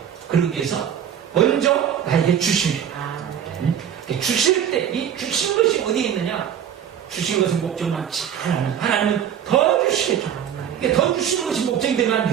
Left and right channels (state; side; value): quieter; left; 9.2 dB